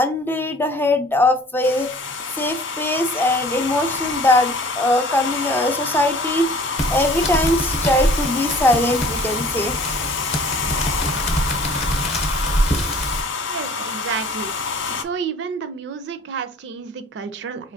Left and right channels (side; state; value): both; normal; correlation 0.50